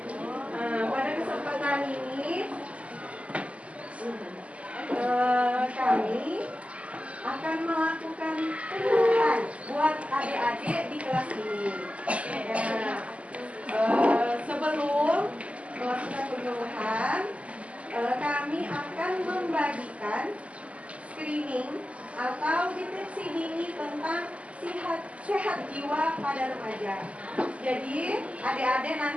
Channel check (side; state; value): left; late; 0.064 ms